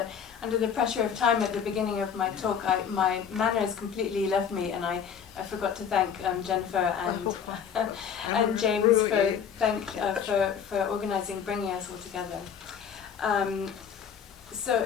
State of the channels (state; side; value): quieter; right; 7.5 dB